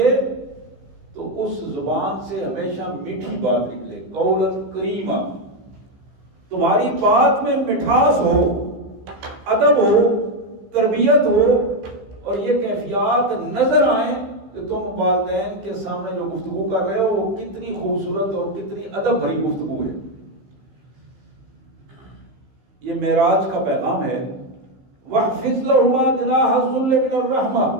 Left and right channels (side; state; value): left; late; 15 ms